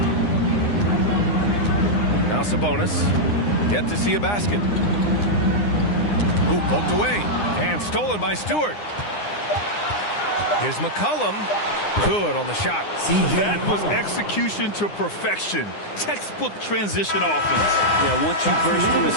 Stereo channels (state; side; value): late; right; 9.8 ms